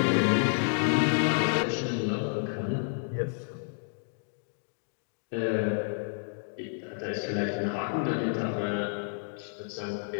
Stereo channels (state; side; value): silent; right; digital silence